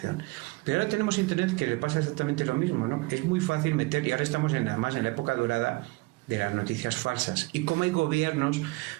Pero ahora tenemos internet, que le pasa exactamente lo mismo, ¿no? Es muy fácil meter, y ahora estamos además en la época dorada de las noticias falsas. Y como hay gobiernos,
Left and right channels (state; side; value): quieter; left; 23.9 dB